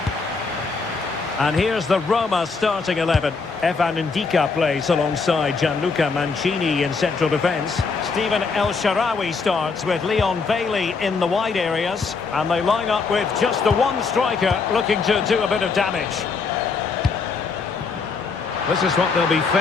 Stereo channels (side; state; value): right; quieter; 4.7 dB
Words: And here's the Roma starting 11. Evan Ndika plays alongside Gianluca Mancini in central defence. Steven El Shaarawy starts with Leon Bailey in the wide areas. And they line up with just the one striker looking to do a bit of damage. This is what they'll be